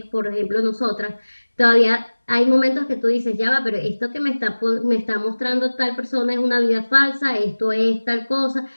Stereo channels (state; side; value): inverted; both; correlation -1.00